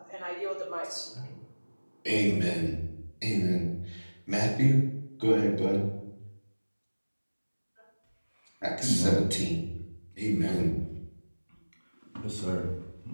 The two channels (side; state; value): both; inverted; correlation -1.00